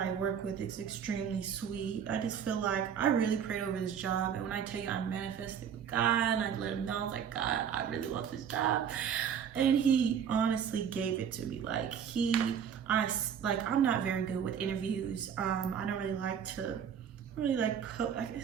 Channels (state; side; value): quieter; left; 8.1 dB